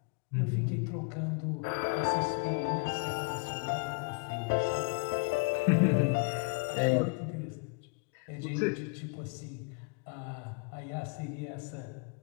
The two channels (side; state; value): right; quieter; 33.3 dB